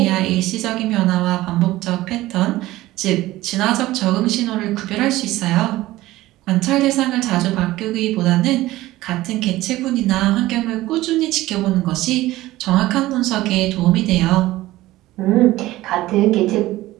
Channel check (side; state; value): left; quieter; 16.9 dB